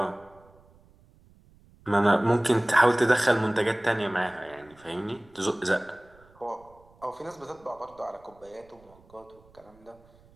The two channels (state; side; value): noise; right; rumble, 28 dB below the sound